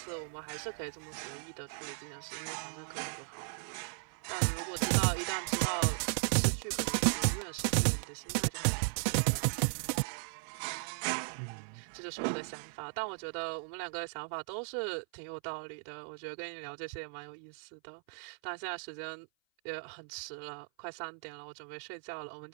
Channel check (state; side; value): silent; left; 53 dB below the other